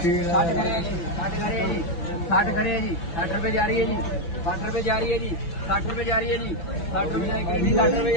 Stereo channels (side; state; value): right; late; 5.9 ms